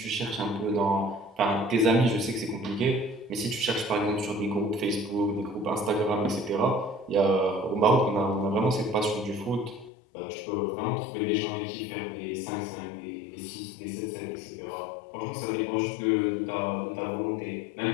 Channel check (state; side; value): drops out; right; at 9.9 s